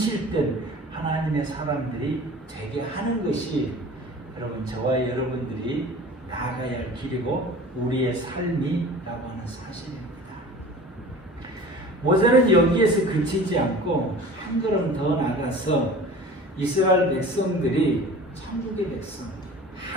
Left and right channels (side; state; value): both; normal; correlation 0.41